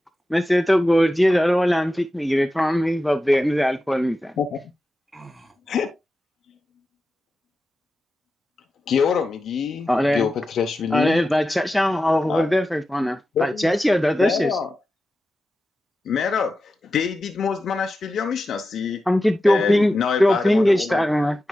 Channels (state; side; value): normal; both; correlation 0.92